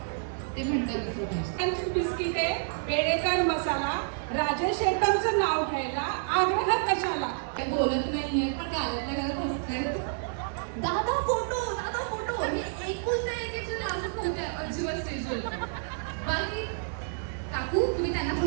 ते म्हणतात दुसरं पाहिजे. बिस्किटे पेडेकर मसाला राजेश शेट्टरचं नाव घ्यायला आग्रह कशाला. ते बोलत नाहीये पण गावातल्या घरात हसतायत. दादा फोटो हे ऐकून नाही की लाजत नव्हते अजिबात स्टेजवर. बाकी काकू तुम्ही त्यांना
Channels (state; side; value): silent; left; digital silence